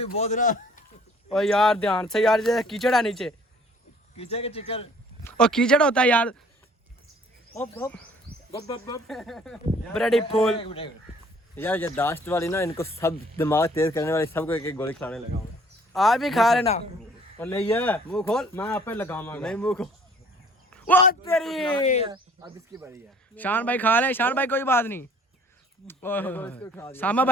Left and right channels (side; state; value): both; normal; correlation 0.55